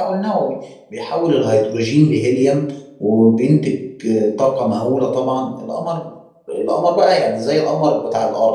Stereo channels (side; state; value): both; identical; correlation 1.00